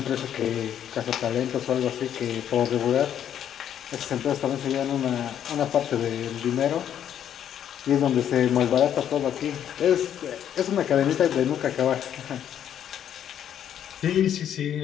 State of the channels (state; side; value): quieter; right; 9.8 dB